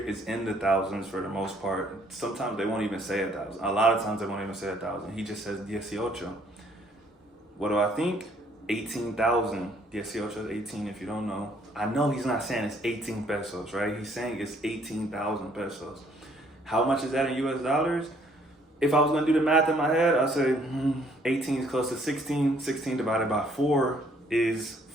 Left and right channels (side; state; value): both; normal; correlation 0.64